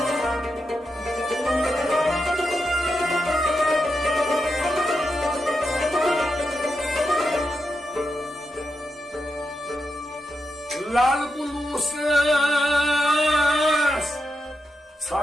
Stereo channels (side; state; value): both; normal; correlation 0.87